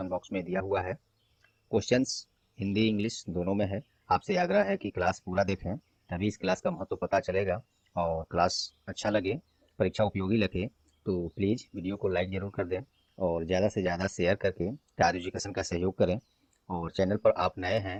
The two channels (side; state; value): both; identical; correlation 1.00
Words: बॉक्स में दिया हुआ है। क्वेश्चंस हिंदी इंग्लिश दोनों में है। आपसे आग्रह है कि क्लास पूरा देखें, तभी इस क्लास का महत्व पता चलेगा। और क्लास अच्छा लगे, परीक्षा उपयोगी लगे तो प्लीज़ वीडियो को लाइक ज़रूर कर दें और ज़्यादा से ज़्यादा शेयर करके तार एजुकेशन का सहयोग करें। और चैनल पर आप नए